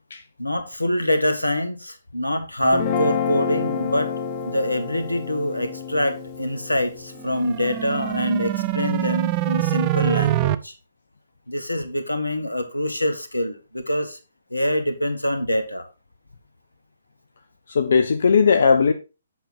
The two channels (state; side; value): inverted; both; correlation -0.72